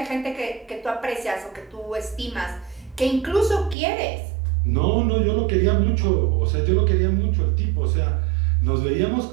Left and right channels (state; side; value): drops out; left; at 3.8 s